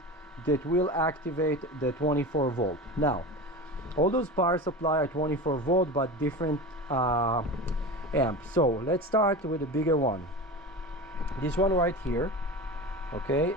that will activate the 24 volt. Now all those power supply are 24 volt but different amps. So let's start with the bigger one, this one right here. Okay,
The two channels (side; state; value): both; normal; correlation 0.29